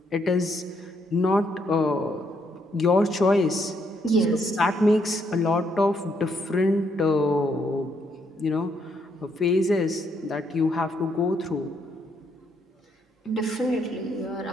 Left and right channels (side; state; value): both; normal; correlation 0.74